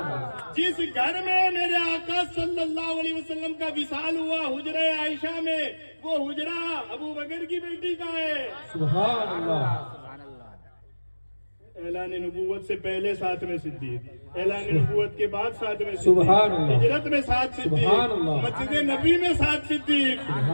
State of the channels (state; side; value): inverted; both; correlation -1.00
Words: اللہ. جس گھر میں میرے آقا صلی اللہ علیہ وسلم کا وصال ہوا حجرہ عائشہ میں وہ حجرہ ابو بکر کی بیٹی کا ہے. سبحان اللہ. اعلان نبوت سے پہلے ساتھ میں صدیق, اعلان نبوت کے بعد ساتھ میں سبحان اللہ. ہجرت میں ساتھ صدیق, سبحان اللہ. مسجد نبی میں ساتھ صدیق,